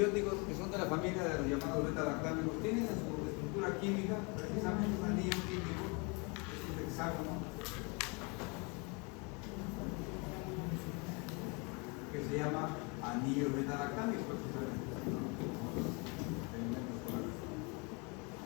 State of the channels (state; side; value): quieter; right; 30.9 dB